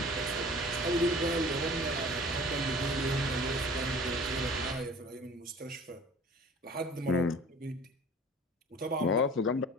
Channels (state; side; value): normal; both; correlation 0.44